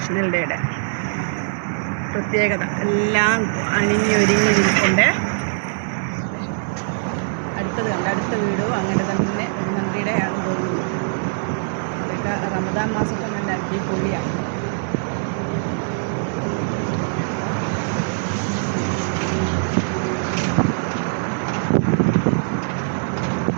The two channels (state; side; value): silent; left; digital silence